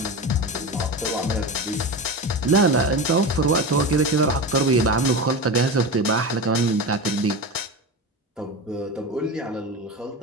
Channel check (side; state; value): both; normal; correlation 0.24